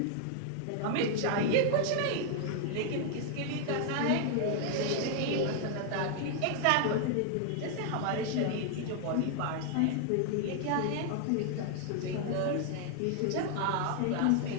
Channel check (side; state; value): both; different; correlation 0.00